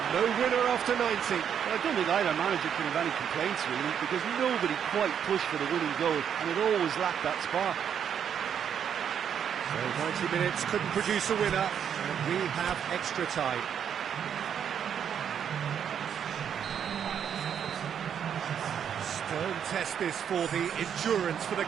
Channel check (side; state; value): left; quieter; 8.4 dB